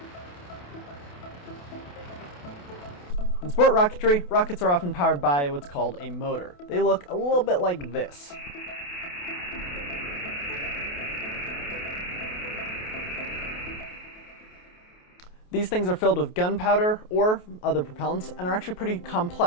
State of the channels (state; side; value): late; right; 28 ms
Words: In sport rocketry, rockets are often powered by what's called a motor. They look a little bit like this. These things are filled with gunpowder or other propellants and are actually pretty